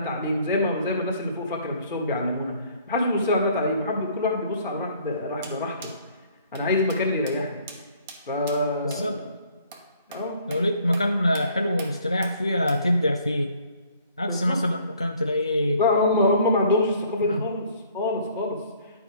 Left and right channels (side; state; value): both; inverted; correlation -0.59